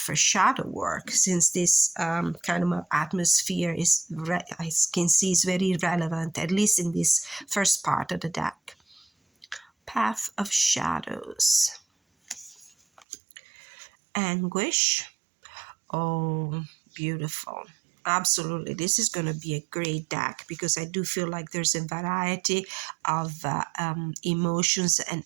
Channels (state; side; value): drops out; left; at 13.1 s